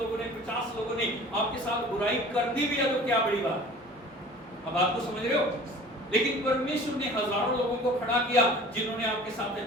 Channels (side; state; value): both; normal; correlation 0.45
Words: ने, 50 लोगों ने आपके साथ बुराई कर दी भी है तो क्या बड़ी बात। अब आप तो समझ रहे हो। लेकिन परमेश्वर ने हजारों लोगों को खड़ा किया जिन्होंने आपके साथ